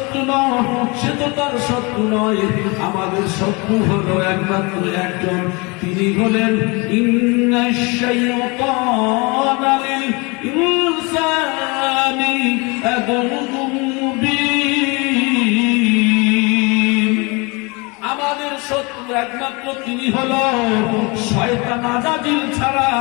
নও, সে তো তার শত্রু নয়। আমাদের শত্রু হলো একমাত্র একজন, তিনি হলেন ইন্নাশ শাইতানা লিল ইনসানি আদুউম মুবিন। আমাদের শত্রু একমাত্র তিনি হলো শয়তান আজাজিল ছাড়া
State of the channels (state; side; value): quieter; right; 28.1 dB